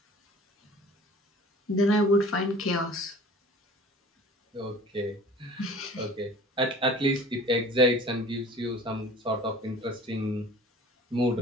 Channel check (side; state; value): both; normal; correlation 0.45